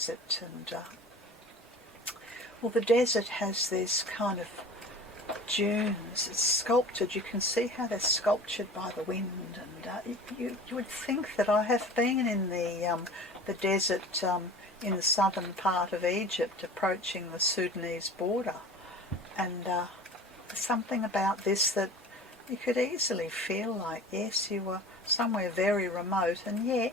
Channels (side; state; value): both; normal; correlation 0.40